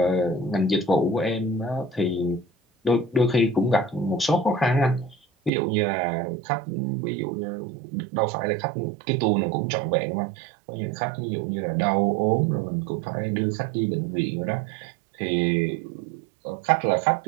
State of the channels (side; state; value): left; drops out; at 5.5 s